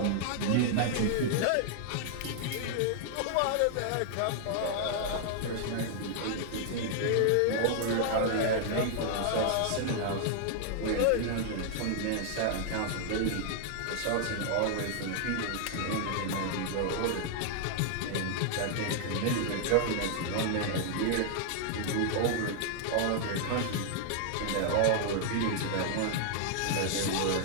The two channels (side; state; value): both; different; correlation -0.01